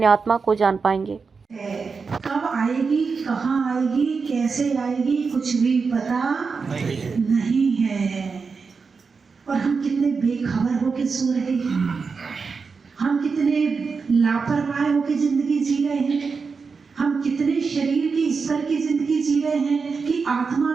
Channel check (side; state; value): left; quieter; 5.0 dB